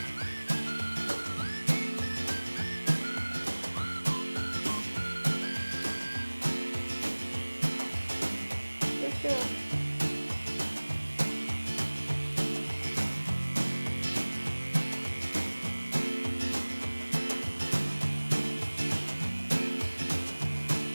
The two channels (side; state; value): both; inverted; correlation -1.00